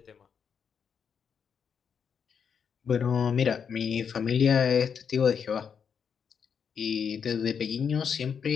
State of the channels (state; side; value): quieter; right; 7.0 dB